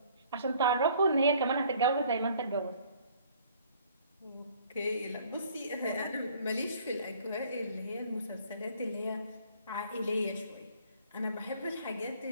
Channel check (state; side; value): inverted; both; correlation -0.57